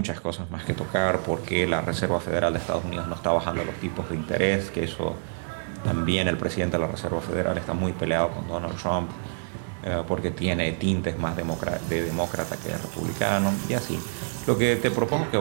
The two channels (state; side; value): silent; left; digital silence